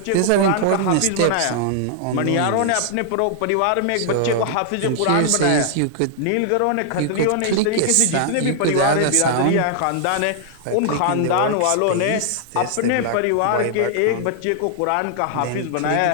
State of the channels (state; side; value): different; both; correlation 0.00